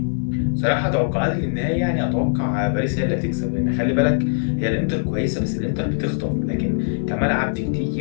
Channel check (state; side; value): silent; right; digital silence